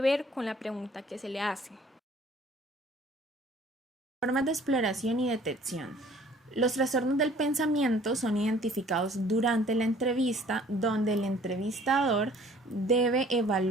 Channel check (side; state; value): both; normal; correlation 0.54